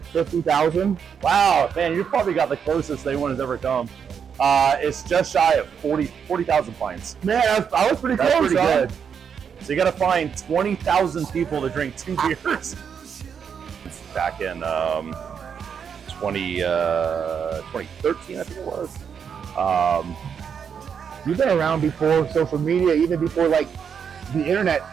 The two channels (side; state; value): left; quieter; 7.2 dB